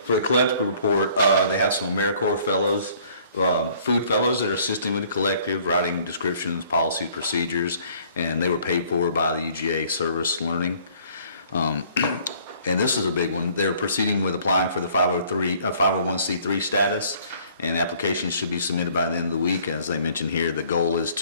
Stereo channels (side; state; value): both; inverted; correlation -0.58